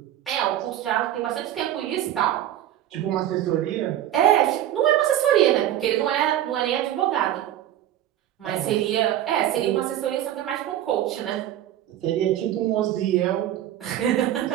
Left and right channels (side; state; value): left; quieter; 12.1 dB